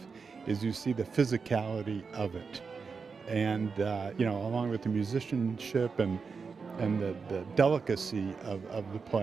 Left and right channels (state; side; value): quieter; left; 5.2 dB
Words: is you see the physicality of it. And, you know, along with the musicianship and the delicacy of the